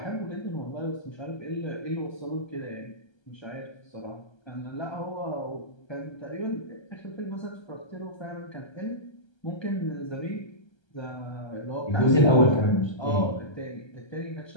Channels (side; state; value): right; late; 1.3 ms